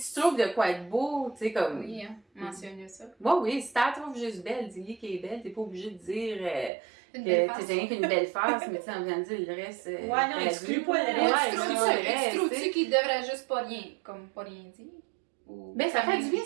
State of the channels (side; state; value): left; drops out; at 6.7 s